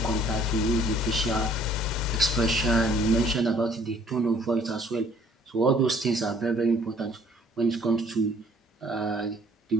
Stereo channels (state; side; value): normal; both; correlation 0.59